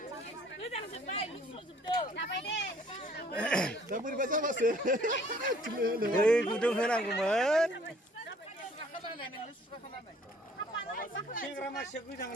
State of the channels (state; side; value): normal; both; correlation 0.58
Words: दै गुदुं होनांगौमोन। सेंग्रा मानसिया गोजाङो